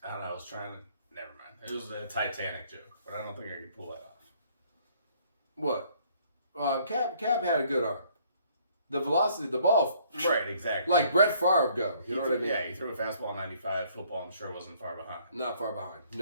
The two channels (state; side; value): inverted; both; correlation -0.62